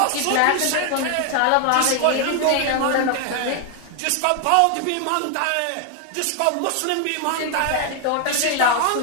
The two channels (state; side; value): different; both; correlation 0.00